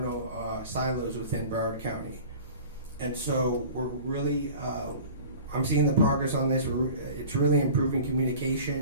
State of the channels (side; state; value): both; inverted; correlation -0.41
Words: silos within Broward County. And so we're really, I'm seeing the progress on this. It's really improving